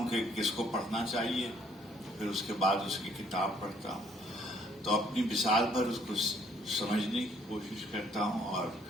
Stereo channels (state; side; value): normal; both; correlation 0.63